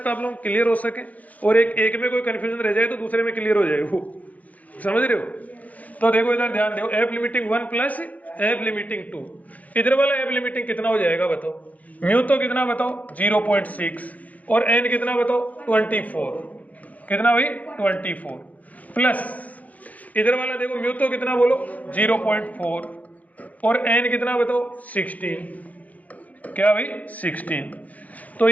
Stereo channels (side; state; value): right; late; 0.076 ms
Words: आप लोग क्लियर हो सके और एक में कोई कंफ्यूजन रह जाए तो दूसरे में क्लियर हो जाए, वो समझ रहे हो। तो देखो इधर ध्यान दो, F limiting 1 plus F limiting 2, इधर वाला एफ लिमिटिंग कितना हो जाएगा बताओ, म्यू तो कितना बताओ 0.6 और एन कितना बताओ 24, कितना भाई 24 प्लस इधर वाला देखो म्यू तो कितना बोलो 0.4 और एन कितना बताओ 16, क्या भाई 16, तो